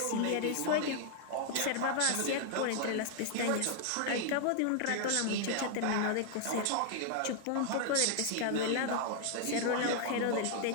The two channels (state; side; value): different; both; correlation 0.00